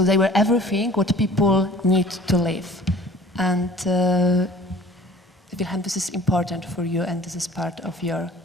they were everything what people need to live. And Wilhelm, this is important for you, and this is part of your...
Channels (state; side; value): normal; both; correlation 0.48